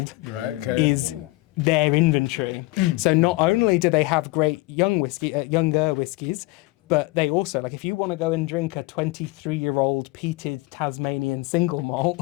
is their inventory. So not only do they have great younger whiskies, but they also, like, if you want to go and drink a 23-year-old peated Tasmanian single malt,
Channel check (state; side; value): quieter; right; 22.1 dB